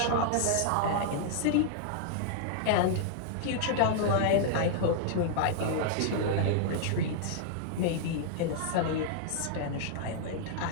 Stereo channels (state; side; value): different; both; correlation -0.01